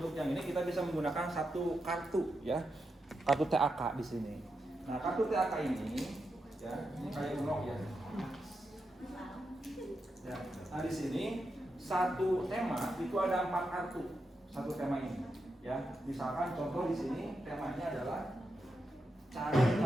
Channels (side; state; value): both; normal; correlation 0.86